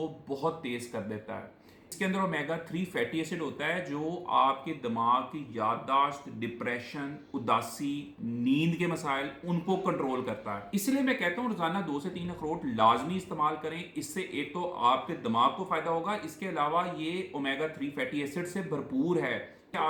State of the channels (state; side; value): identical; both; correlation 1.00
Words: بہت تیز کر دیتا ہے۔ اس کے اندر اومیگا 3 فیٹی ایسڈ ہوتا ہے جو آپ کے دماغ کی یادداشت، ڈپریشن، اداسی، نیند کے مسائل ان کو کنٹرول کرتا ہے۔ اس لیے میں کہتا ہوں روزانہ 2 سے 3 اخروٹ لازمی استعمال کریں۔ اس سے ایک تو آپ کے دماغ کو فائدہ ہوگا، اس کے علاوہ یہ اومیگا 3 فیٹی ایسڈ سے بھرپور ہے۔